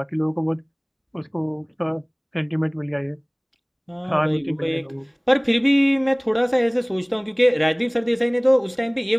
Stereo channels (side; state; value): both; identical; correlation 1.00